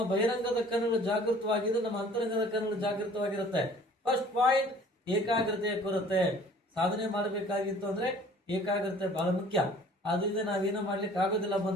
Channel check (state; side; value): normal; both; correlation 0.51